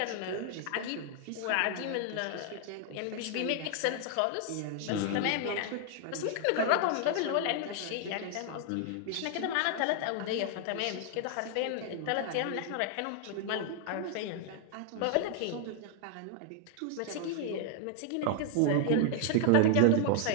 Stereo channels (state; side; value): different; both; correlation 0.00